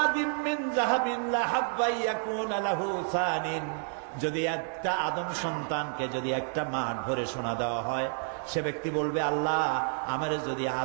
মিন যাহাবিন লাহাব্বা ইয়াকুনা লাহু সানিন। যদি একটা আদম সন্তানকে যদি একটা মাঠ ভরে সোনা দেওয়া হয়, সে ব্যক্তি বলবে, আল্লাহ আমারে যদি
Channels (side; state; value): left; silent; 58 dB below the other